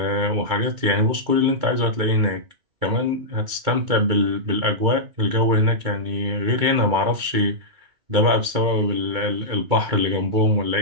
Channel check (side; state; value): left; late; 2.3 ms